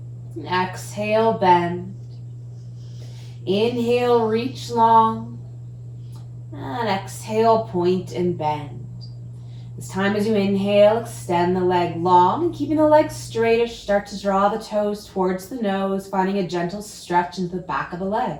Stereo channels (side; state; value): both; identical; correlation 1.00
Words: And exhale, bend. Inhale, reach long. And exhale, point and bend. This time as you inhale, extend the leg long, and keeping the leg straightish, start to draw the toes towards the nose, finding a gentle stretch into the back of the leg.